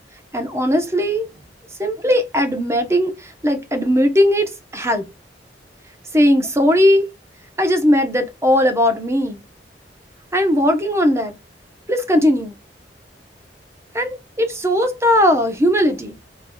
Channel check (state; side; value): normal; both; correlation 0.68